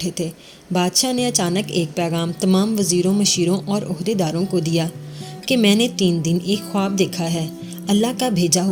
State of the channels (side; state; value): both; identical; correlation 1.00